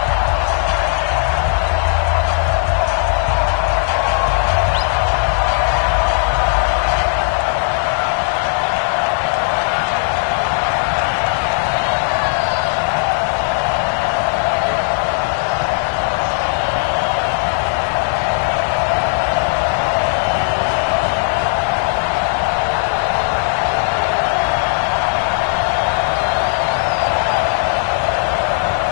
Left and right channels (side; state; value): right; silent; digital silence